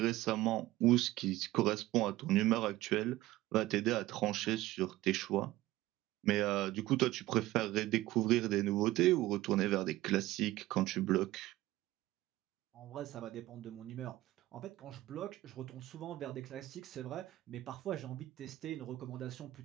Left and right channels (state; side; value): quieter; left; 16.8 dB